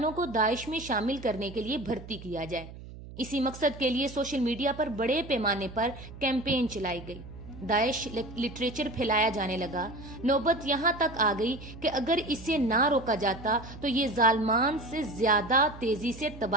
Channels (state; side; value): noise; right; hum, 15 dB below the sound